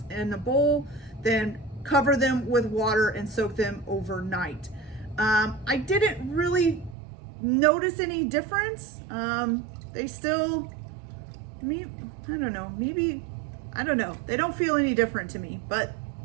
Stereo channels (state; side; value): drops out; left; at 7.0 s